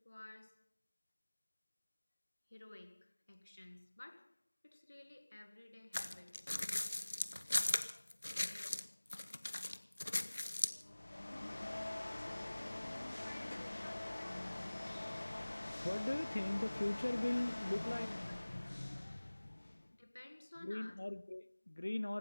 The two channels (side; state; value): both; inverted; correlation -1.00